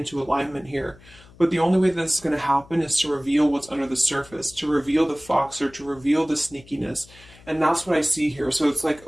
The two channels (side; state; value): left; noise; hum, 24 dB below the sound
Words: alignment here. But the only way that this is going to happen is to reveal what's under the surface, to reveal the fox, or to reveal the sneakiness. And that's what I see here. So it's like